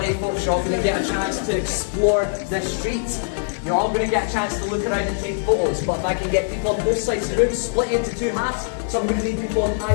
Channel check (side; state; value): right; silent; digital silence